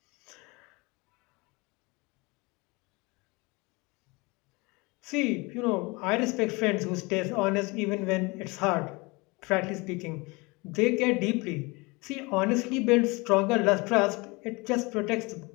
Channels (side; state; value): right; quieter; 25.9 dB